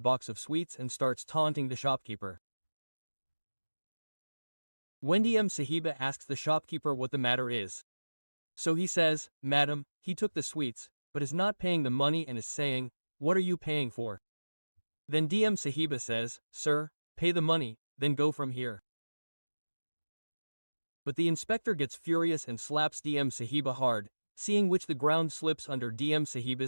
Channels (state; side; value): inverted; both; correlation -1.00